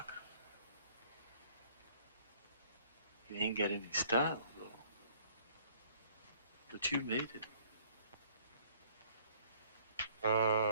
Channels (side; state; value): both; inverted; correlation -0.58